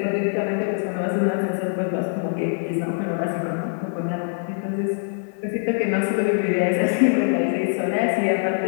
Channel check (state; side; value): silent; right; 63 dB below the other